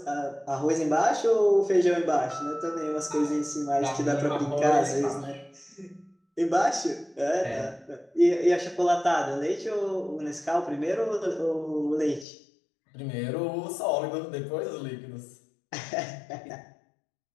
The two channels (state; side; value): drops out; right; at 12.2 s